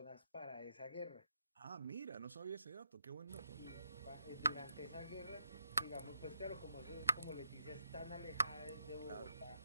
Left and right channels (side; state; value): both; inverted; correlation -0.81